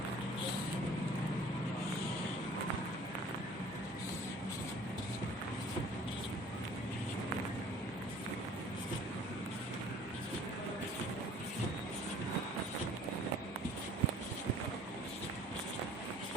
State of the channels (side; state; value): both; normal; correlation 0.50